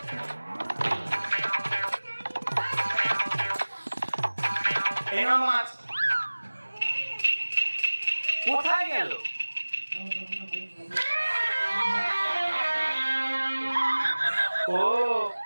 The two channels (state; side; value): inverted; both; correlation -1.00